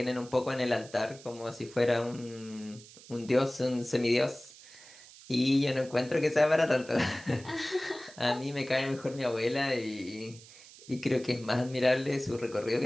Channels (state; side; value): noise; right; hiss, 20 dB below the sound